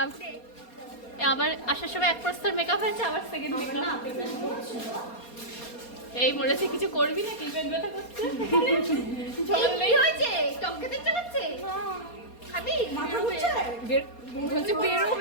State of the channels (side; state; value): right; late; 4.3 ms